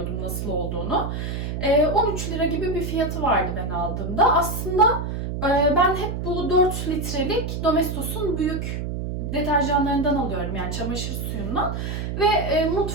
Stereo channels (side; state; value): right; noise; hum, 4 dB below the sound